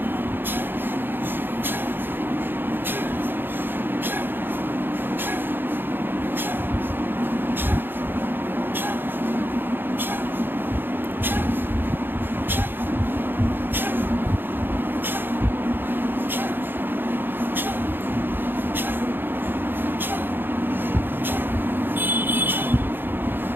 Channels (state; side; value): late; left; 0.098 ms